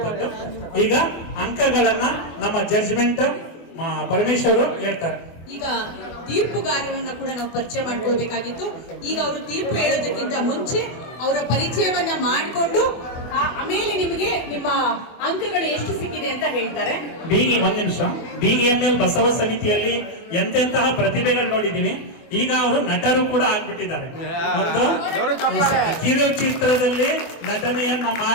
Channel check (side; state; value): right; late; 24 ms